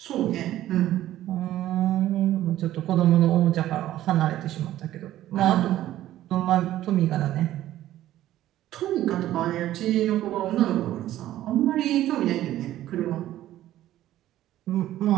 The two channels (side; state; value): left; quieter; 13.6 dB